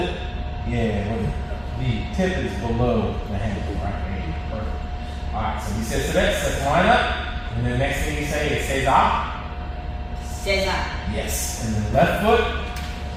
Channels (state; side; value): identical; both; correlation 1.00